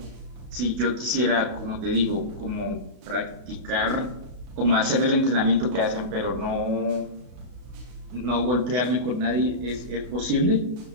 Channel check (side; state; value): left; late; 32 ms